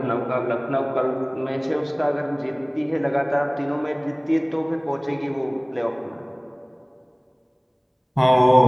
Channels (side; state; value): both; identical; correlation 1.00